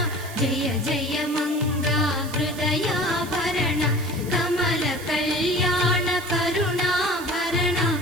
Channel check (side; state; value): right; noise; hiss, 16 dB below the sound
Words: జయ జయ మంగ హృదయాభరణ కమల కళ్యాణ కరుణాభరణ